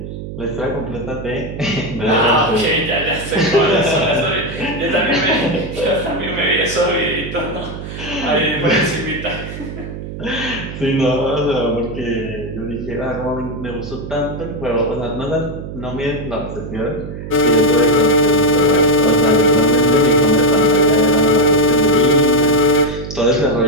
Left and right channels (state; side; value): noise; right; hum, 9 dB below the sound